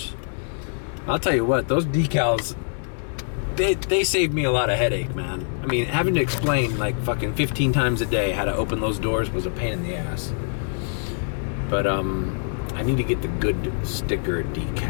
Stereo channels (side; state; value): right; silent; digital silence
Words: I'll tell you what, those decals, they saved me a lot of headache, man. I mean, having to explain like fucking 15 times a day how to open those doors was a pain in the ass. But I need to get the good sticker